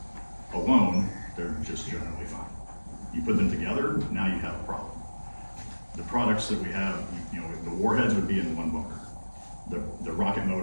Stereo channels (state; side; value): inverted; both; correlation -1.00